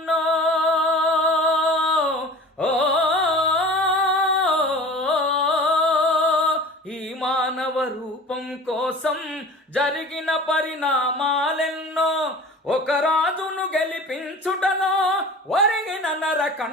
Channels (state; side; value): normal; both; correlation 0.39